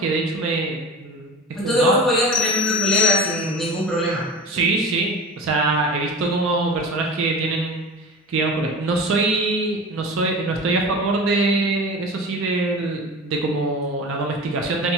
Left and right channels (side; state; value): both; normal; correlation 0.33